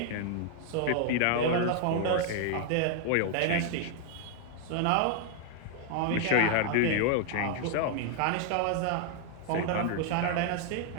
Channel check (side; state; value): both; different; correlation 0.00